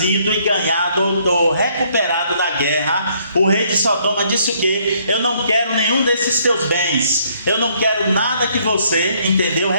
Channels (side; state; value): both; inverted; correlation -0.66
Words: e ganhado ou recuperado da guerra. O rei de Sodoma disse o que? Eu não quero nenhum desses teus bens. Eu não quero nada que você, entendeu?